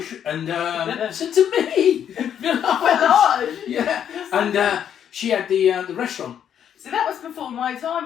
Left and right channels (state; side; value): quieter; right; 9.2 dB